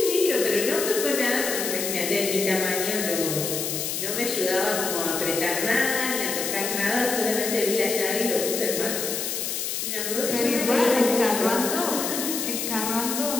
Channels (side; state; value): left; noise; hiss, 2 dB below the sound